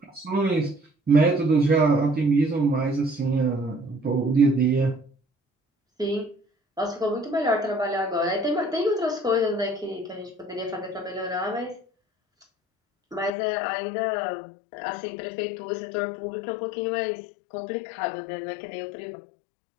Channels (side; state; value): right; drops out; at 13.3 s